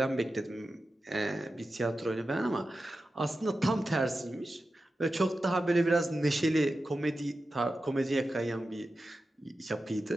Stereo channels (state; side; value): normal; both; correlation 0.92